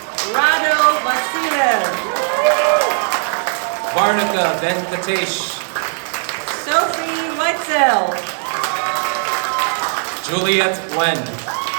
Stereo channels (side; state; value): left; silent; 62 dB below the other